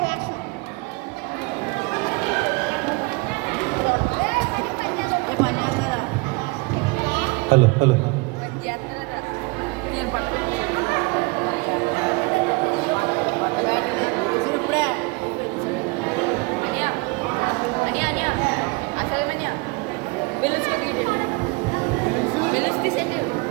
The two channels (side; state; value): left; quieter; 27.0 dB